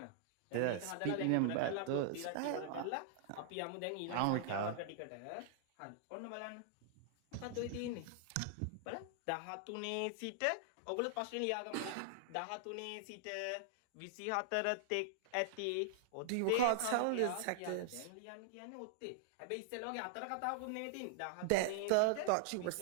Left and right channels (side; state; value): both; different; correlation -0.01